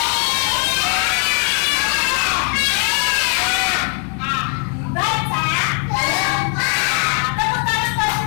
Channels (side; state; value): right; quieter; 38.4 dB